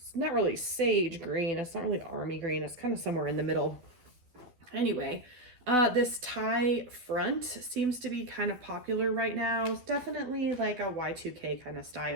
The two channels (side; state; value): left; late; 12 ms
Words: not really sage green. It's not really army green. It's kind of somewhere in the middle. Anyway, this tie front seems to be kind of popular right now. It's definitely like a Y2K kind of